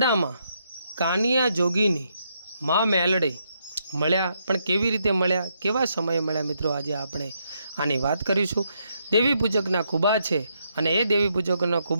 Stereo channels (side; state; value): both; inverted; correlation -0.78